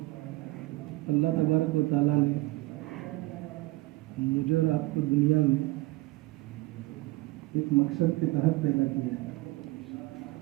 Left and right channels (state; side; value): quieter; left; 20.0 dB